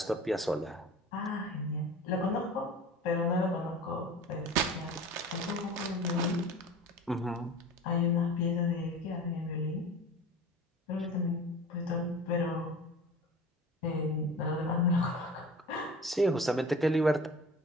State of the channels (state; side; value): normal; both; correlation 0.39